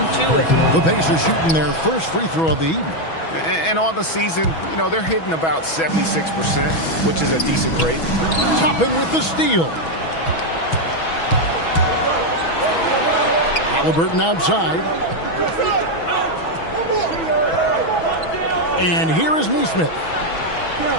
to it. The Pacers shooting their first free throw of the evening. And on the season, you know, they're hitting about 76%, which is a decent rate. Toppin with the steal. Halliburton outside. And here is Neesmith.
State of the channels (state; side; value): late; right; 6.2 ms